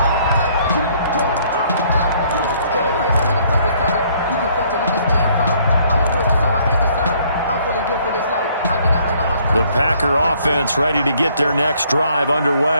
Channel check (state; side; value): inverted; both; correlation -0.63